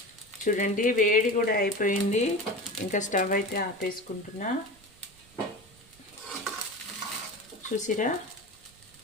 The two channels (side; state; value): right; noise; rumble, 28 dB below the sound